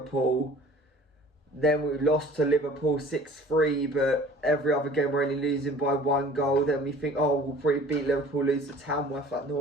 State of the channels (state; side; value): normal; both; correlation 0.48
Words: Then we lost to Liverpool 6-3, but every other game we're only losing by 1 goal. Then we think, oh, we'll probably beat Liverpool, lose to Tamworth like